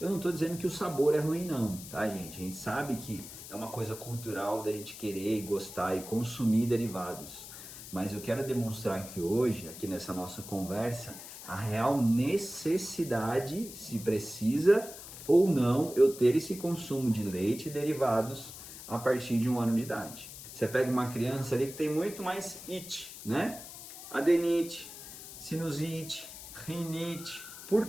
não estou dizendo que o sabor é ruim não, tá gente? A gente sabe que é uma coisa cultural da gente querer e gostar e consumir derivados. Mas eu quero demonstrar aqui hoje, aqui nessa nossa conversa, a real necessidade, se precisa ou não, eu ter esse consumo de leite e derivados a partir de 1 ano de idade. Você pega uma criança ali que tem muito mais it, né? Adenite, sinusite, rinite. Por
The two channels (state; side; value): noise; left; hiss, 13 dB below the sound